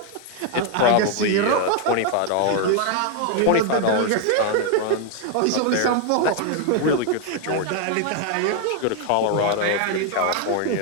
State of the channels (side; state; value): both; different; correlation 0.01